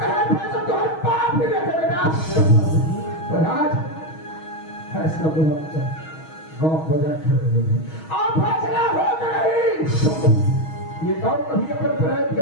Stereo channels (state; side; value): late; right; 6.3 ms